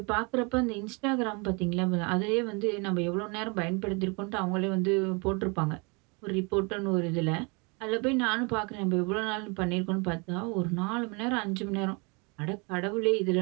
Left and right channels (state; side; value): quieter; left; 31.0 dB